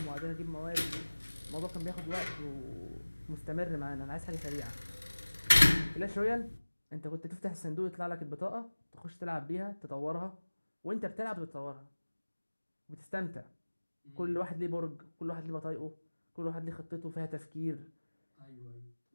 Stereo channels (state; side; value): inverted; both; correlation -1.00